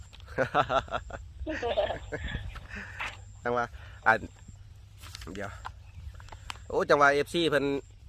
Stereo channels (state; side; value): identical; both; correlation 1.00